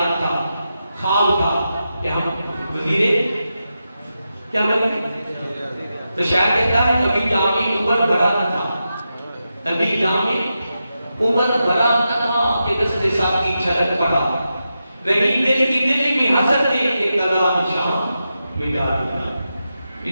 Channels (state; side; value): inverted; both; correlation -0.89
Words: تھا، خواب تھا کہ ہم وزیر کیا بنے، تو شاید کہتا ہے ابھی جامع عمر بھرا نہ تھا، ابھی جامع عمر بھرا نہ تھا کہ دست ساتھ کی چھلک پڑا، رہی دل کی دل میں حسد نے ایک قضا نشان مٹا دیا۔